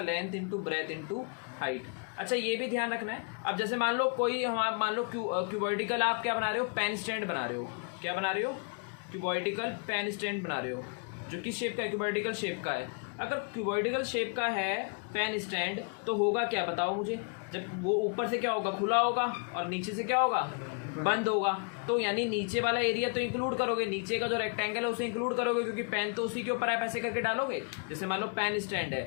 into breadth into height. अच्छा ये भी ध्यान रखना है, अब जैसे मान लो कोई हम आप मान लो क्यूबॉइडिकल आप क्या बना रहे हो, पेन स्टैंड बना रहे हो, क्या बना रहे हो, क्यूबॉइडिकल पेन स्टैंड बना रहे हो, जो किस शेप का है, क्यूबॉइडिकल शेप का है। अगर क्यूबॉइडिकल शेप का है पेन स्टैंड तो होगा क्या बताओ मुझे, जब वो ऊपर से क्या होगा, खुला होगा, और नीचे से क्या होगा, बंद होगा। तो यानी नीचे वाला एरिया तो इंक्लूड करोगे, नीचे का जो रेक्टेंगल है उसे इंक्लूड करोगे, क्योंकि पेन तो उसी के ऊपर आप ऐसे करके डालोगे। जैसे मान लो पेन स्टैंड है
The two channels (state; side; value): quieter; right; 38.0 dB